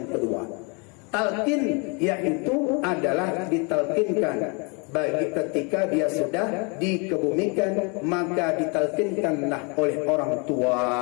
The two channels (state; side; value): quieter; right; 33.1 dB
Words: kedua. Talkin yaitu adalah ditalkinkan bagi ketika dia sudah dikebumikan, maka ditalkinkanlah oleh orang